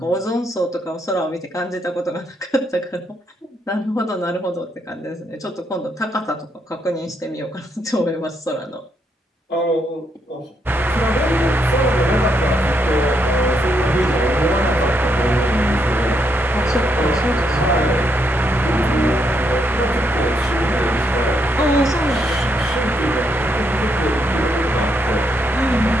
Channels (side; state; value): both; normal; correlation 0.77